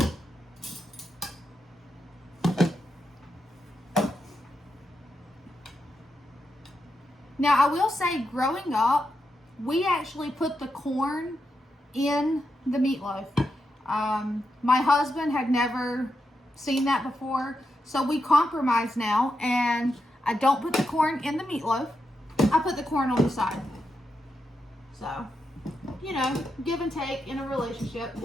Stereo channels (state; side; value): normal; both; correlation 0.85